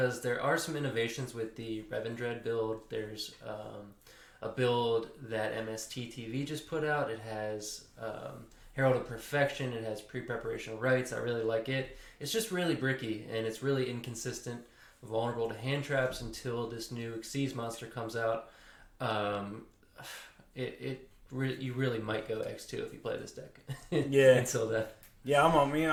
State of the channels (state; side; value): identical; both; correlation 1.00